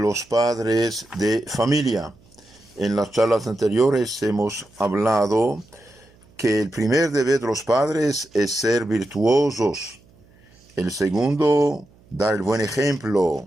padres de familia. En las charlas anteriores hemos hablado que el primer deber de los padres es ser virtuosos. El segundo, dar el buen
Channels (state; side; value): noise; right; hum, 29 dB below the sound